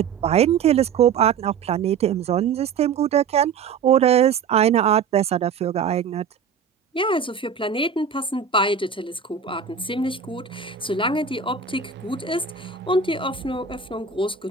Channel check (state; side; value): quieter; left; 6.6 dB